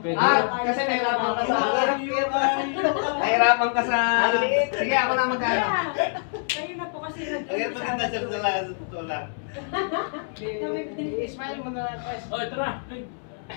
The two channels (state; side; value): silent; right; 62 dB below the other